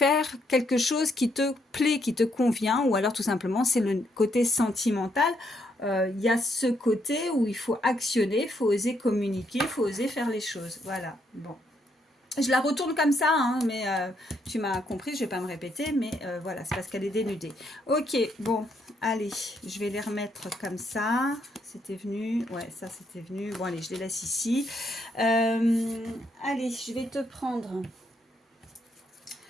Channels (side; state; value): both; normal; correlation 0.75